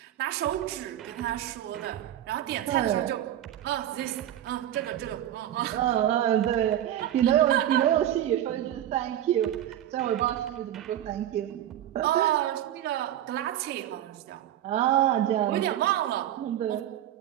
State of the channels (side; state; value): left; quieter; 11.8 dB